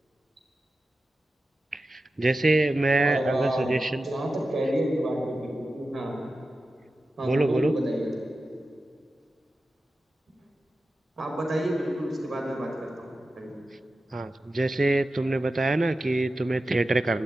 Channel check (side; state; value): both; normal; correlation 0.93